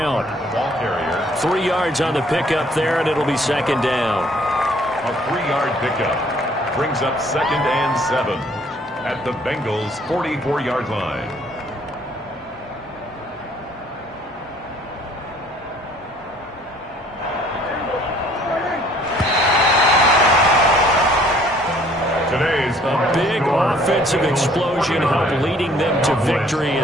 3 yards on the pickup there, and it'll be second down. A 3-yard pickup brings up 2nd and 7 at the Bengals' 44-yard line. Today's a big offensive explosion helped leading them to victory.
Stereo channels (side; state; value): both; normal; correlation 0.59